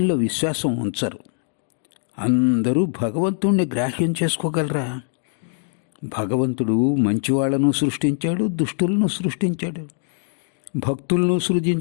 విశ్వాసం ఉంచరు. అందరూ భగవంతుణ్ణి గ్రాహ్యం చేసుకోగలరా? భగవంతుడు మంచివాళ్లను సృష్టించాడు, దుష్టులను సృష్టించాడు, భక్తులను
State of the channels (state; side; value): silent; right; digital silence